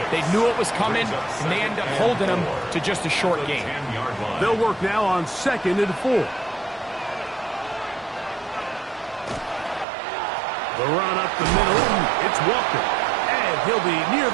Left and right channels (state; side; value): drops out; left; at 9.9 s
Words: they knew it was coming, and they end up holding them to just a short game. They'll work now on 2nd and 4. The run up the middle, it's Walker. And he'll be near